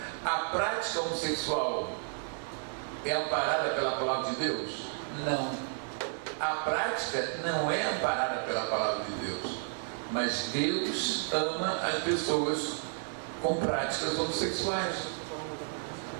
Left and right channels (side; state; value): left; silent; 56 dB below the other